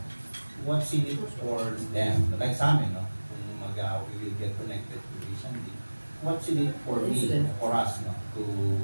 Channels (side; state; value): both; inverted; correlation -1.00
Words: what's in it for them? Like sa amin, kung we will get connected to Asian Link, what's in it for me, for us, to